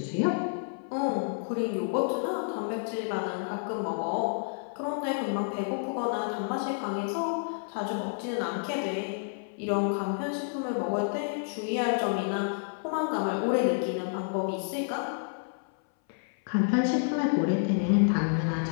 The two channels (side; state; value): right; silent; 58 dB below the other